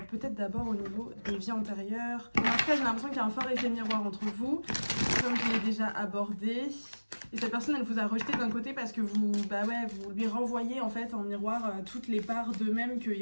peut-être d'abord au niveau des vies antérieures. Mais en tout cas, j'ai l'impression qu'il y a un fort effet miroir entre vous, comme je l'ai déjà abordé. Et cette personne, elle vous a rejeté d'un côté parce que vous lui renvoyez en fait en miroir toutes les parts d'eux-mêmes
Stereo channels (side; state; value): both; inverted; correlation -1.00